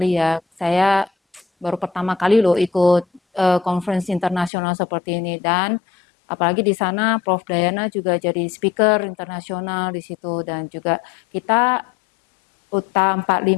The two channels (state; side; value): drops out; right; at 4.5 s